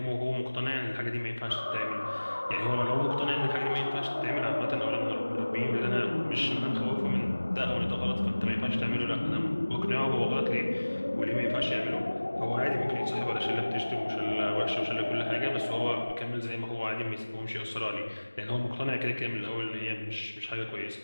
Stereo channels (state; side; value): inverted; both; correlation -1.00